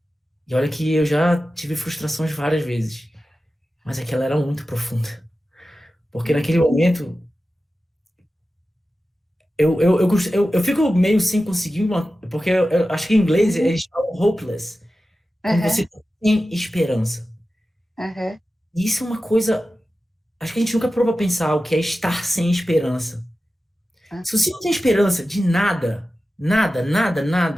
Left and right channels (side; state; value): both; normal; correlation 0.94